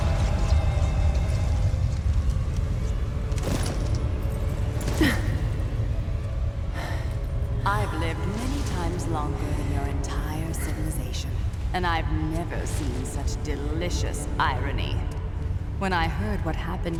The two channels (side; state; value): both; identical; correlation 1.00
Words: I've lived many times longer than your entire civilization, and I've never seen such delicious irony. When I heard what